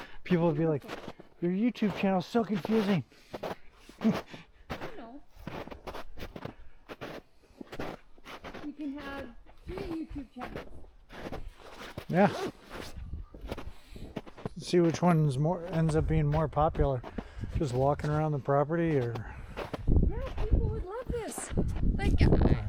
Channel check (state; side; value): identical; both; correlation 1.00